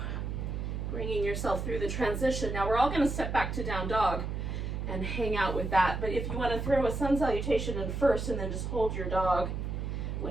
bringing yourself through the transition. Now we're all going to step back to down dog and hang out with that. But if you want to throw a sun salutation in first and then just hold your dog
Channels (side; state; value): right; noise; hum, 3 dB below the sound